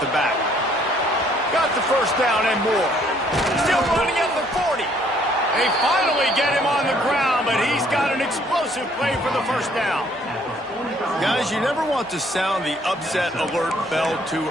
the back. Got the first down and more. Still running at the 40. They finally get him on the ground, but he's got an explosive play for the first down. Guys, you never want to sound the upset alert bell too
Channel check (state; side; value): normal; both; correlation 0.63